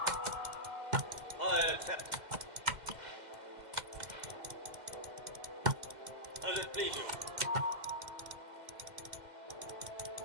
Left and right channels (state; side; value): late; left; 2.0 ms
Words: I accept. As it please you.